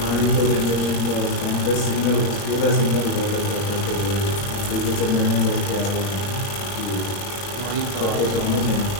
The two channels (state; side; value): late; right; 21 ms